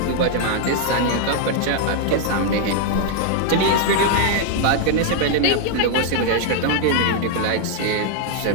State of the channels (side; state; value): both; different; correlation 0.00